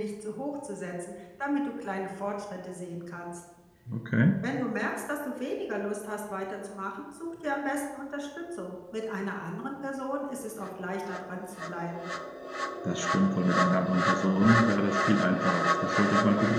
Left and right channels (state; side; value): identical; both; correlation 1.00